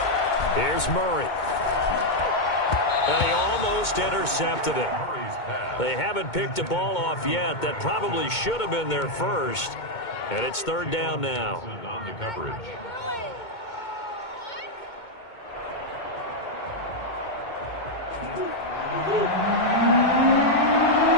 Here's Murray. And he almost intercepted it. They haven't picked a ball off yet. That probably should have been their first. And it's third down now. On the coverage.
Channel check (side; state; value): right; late; 2.2 ms